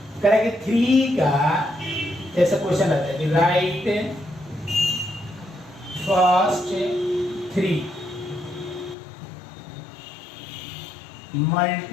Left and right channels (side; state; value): right; drops out; at 9.0 s